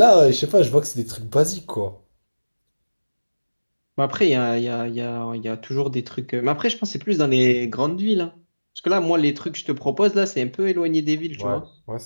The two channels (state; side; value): inverted; both; correlation -1.00